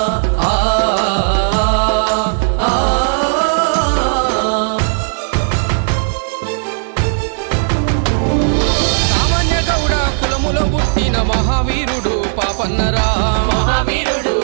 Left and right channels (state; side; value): silent; left; digital silence